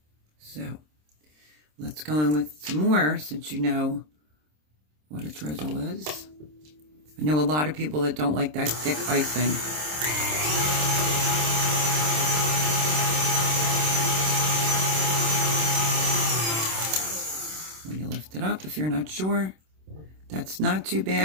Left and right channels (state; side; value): late; left; 26 ms